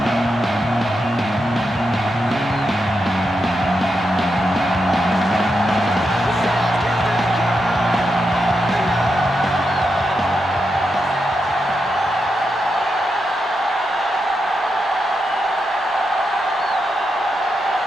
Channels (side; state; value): both; normal; correlation 0.85